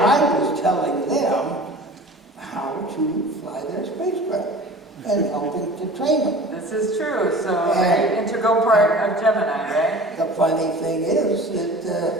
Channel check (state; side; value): normal; both; correlation 0.41